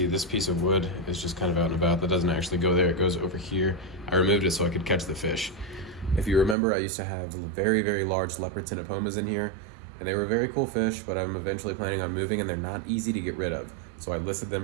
this piece of wood is just kind of out and about. That doesn't actually go there, it goes over here. I removed it so I could catch the fish. If you remember, I used to have very, very large leopard tinopomas in here, and they were very cool fish, but I'm eventually planning on moving, and they're not easy to get rid of. So I listed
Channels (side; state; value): left; drops out; at 6.6 s